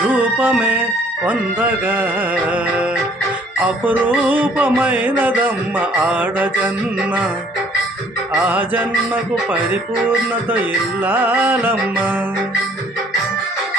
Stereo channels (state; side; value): normal; both; correlation 0.59